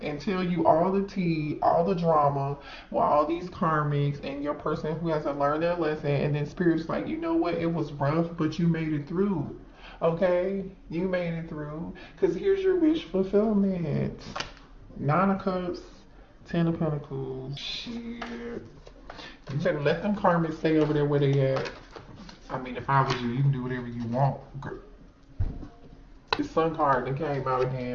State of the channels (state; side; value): identical; both; correlation 1.00